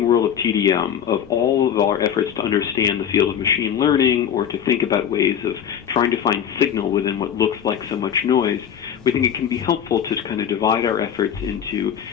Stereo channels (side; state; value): right; quieter; 8.8 dB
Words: world of TDM, of all of our efforts to understand the field of machine learning or to think about ways of trying to find signal within what looks like so much noise, we think it can be helpful to kind of divide our efforts into